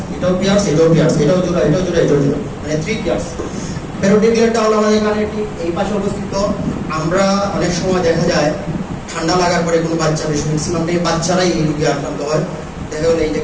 এটাও পিয়ার্স, এটাও পিয়ার্স, এটাও জোড়া, এটাও জোড়া, এটাও জোড়া, মানে 3 পিয়ার্স। প্যারোটিড গ্ল্যান্ডটা হলো আমাদের কানের ঠিক এই পাশে অবস্থিত। আমরা অনেক সময় দেখা যায় ঠান্ডা লাগার পরে কোনো বাচ্চা, বেশি ম্যাক্সিমাম বাচ্চারাই এই রোগে আক্রান্ত হয়, দেখা গেলো এই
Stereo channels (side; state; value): both; identical; correlation 1.00